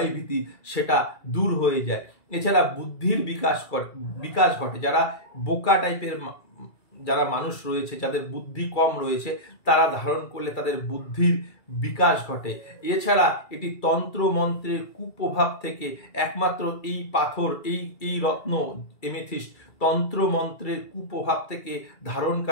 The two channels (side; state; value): right; late; 2.3 ms